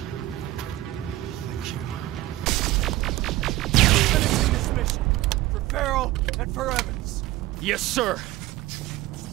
thank you. We're finishing this mission. For Farrell and for Evans. Yes, sir!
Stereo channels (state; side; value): quieter; left; 16.6 dB